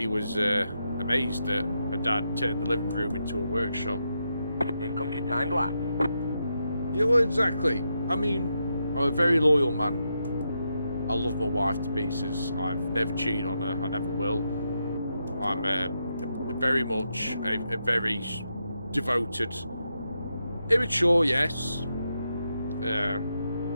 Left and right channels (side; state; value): both; inverted; correlation -0.84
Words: was amazed that her dad turned the living room into a workshop. Here comes your time lap. Yeah, well, exactly. I mean, I'm a very loyal man. I love my wife to pieces. I've never cheated on her. I never will. I'm very much a very devoted, immature, yes.